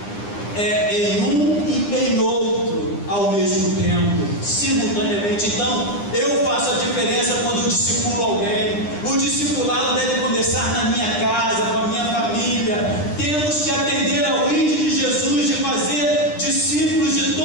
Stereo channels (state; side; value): late; right; 9.9 ms